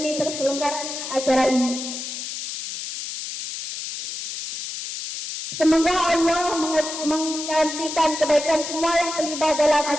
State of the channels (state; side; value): noise; left; hiss, 7 dB below the sound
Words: terselenggaranya acara ini. Semoga Allah menggantikan kebaikan semua yang terlibat dalam